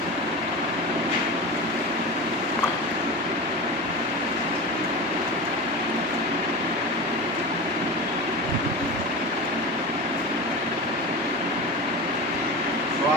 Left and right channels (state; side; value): normal; both; correlation 0.27